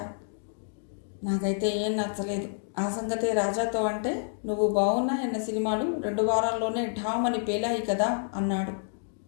నాకైతే ఏం నచ్చలేదు. ఆ సంగతే రాజాతో అంటే నువ్వు బాగున్నాయన్న సినిమాలు 2 వారాల్లోనే ఢామని పేలాయి కదా అన్నాడు.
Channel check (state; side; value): silent; right; digital silence